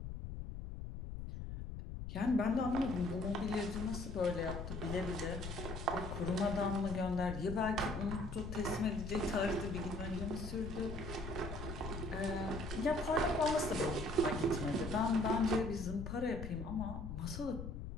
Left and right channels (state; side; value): noise; left; rumble, 7 dB below the sound